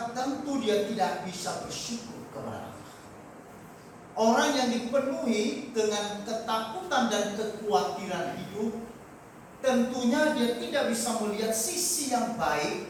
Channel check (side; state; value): both; identical; correlation 1.00